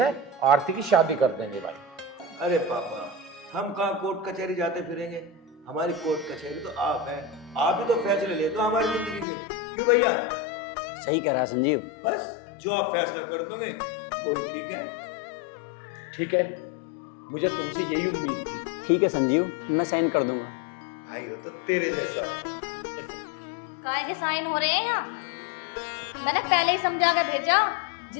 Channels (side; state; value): right; drops out; at 9.2 s